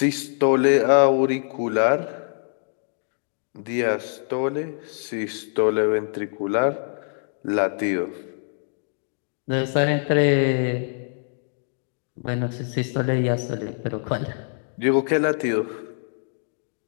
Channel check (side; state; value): right; silent; digital silence